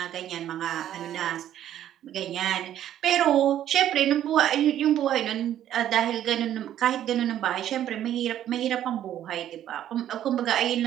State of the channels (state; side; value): quieter; left; 11.4 dB